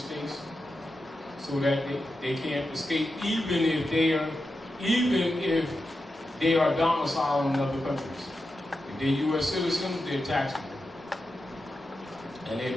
so that they can't escape, even if they are domiciled in other countries. If they're U.S. citizens, they're taxable.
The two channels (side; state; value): both; normal; correlation 0.89